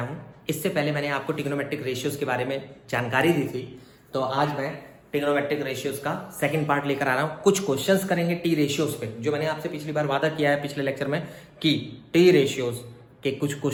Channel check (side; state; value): both; identical; correlation 1.00